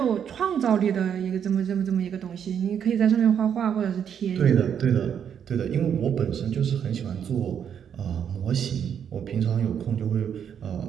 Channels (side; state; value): left; quieter; 8.3 dB